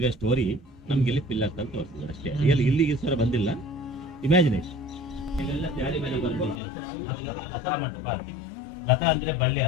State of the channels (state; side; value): drops out; right; at 6.6 s